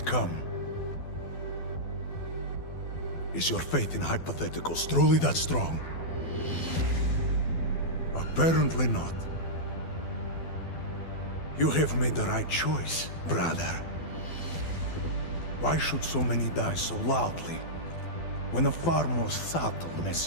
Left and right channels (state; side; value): late; right; 12 ms